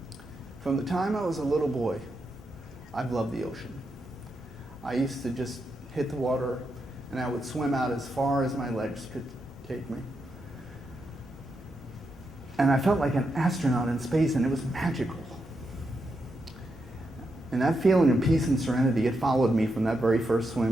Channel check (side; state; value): both; normal; correlation 0.84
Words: From the time I was a little boy, I've loved the ocean. I used to just hit the water, and I would swim out as far as my legs could take me. And I felt like an astronaut in space, and it was magical. And that feeling of peace and serenity, it followed me from that very first